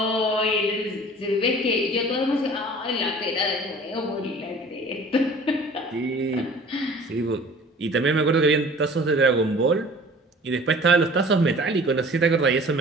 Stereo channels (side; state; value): both; normal; correlation 0.46